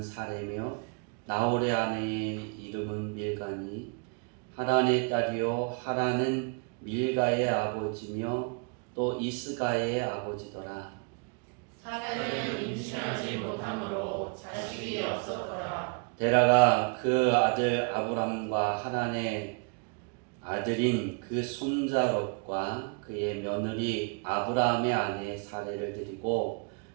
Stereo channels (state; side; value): quieter; left; 36.5 dB